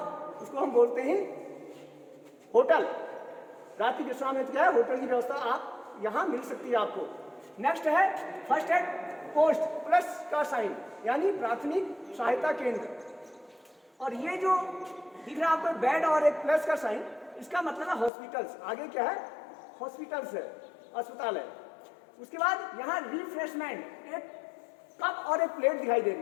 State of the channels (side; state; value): right; drops out; at 18.1 s